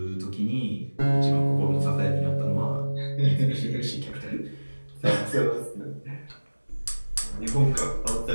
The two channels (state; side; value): inverted; both; correlation -1.00